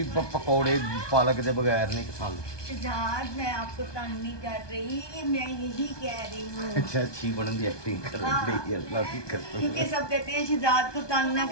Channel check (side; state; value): right; late; 1.2 ms